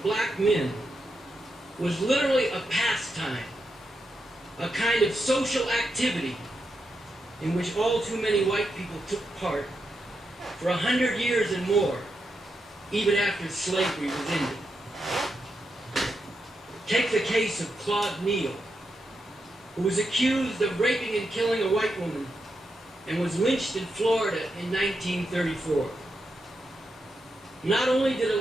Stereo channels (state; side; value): normal; both; correlation 0.85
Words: black men was literally a pastime, a kind of social activity in which all too many white people took part for 100 years and more, even after slavery was ended. Take the case of Claude Neal, who was accused of raping and killing a white woman and was lynched in Florida in 1934. Not only did a